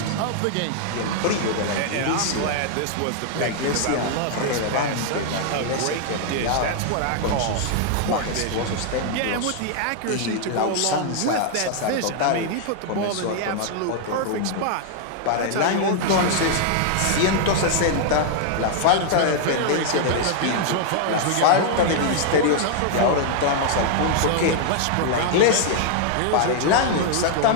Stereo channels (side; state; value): both; different; correlation -0.01